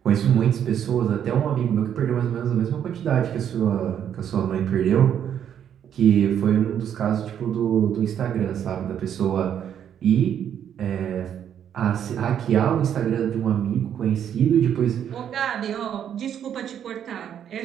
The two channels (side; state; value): left; quieter; 9.3 dB